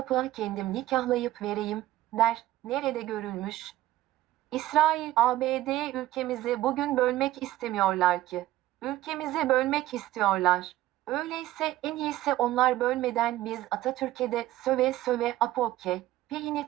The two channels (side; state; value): left; quieter; 15.2 dB